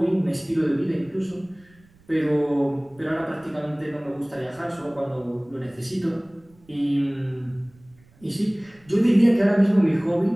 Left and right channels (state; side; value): noise; right; rumble, 29 dB below the sound